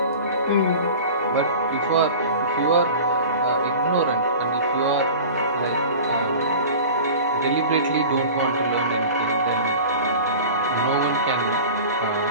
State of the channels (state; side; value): inverted; both; correlation -0.37